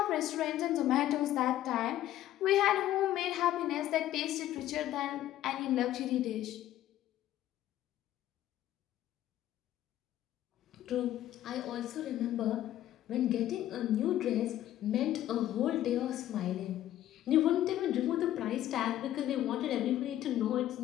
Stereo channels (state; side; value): quieter; right; 13.0 dB